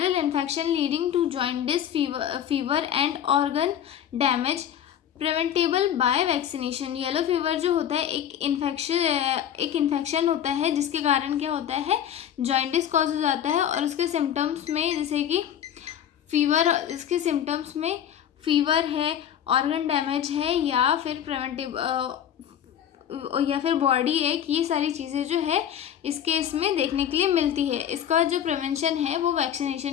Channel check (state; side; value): quieter; right; 9.8 dB